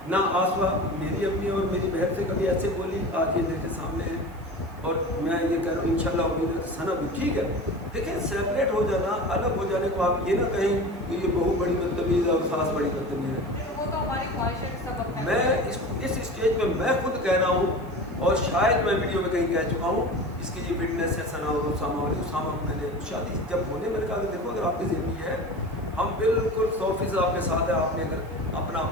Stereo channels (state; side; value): noise; right; hiss, 28 dB below the sound